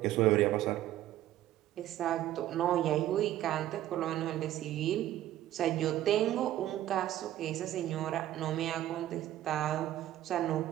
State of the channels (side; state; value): left; quieter; 13.3 dB